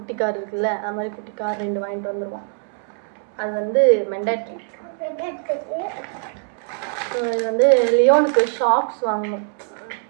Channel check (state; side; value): silent; left; 64 dB below the other